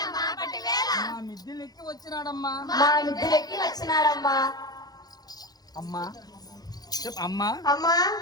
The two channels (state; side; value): late; right; 0.19 ms